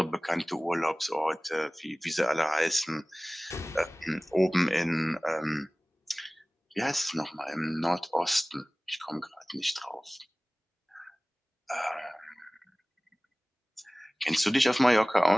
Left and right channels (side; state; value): both; normal; correlation 0.98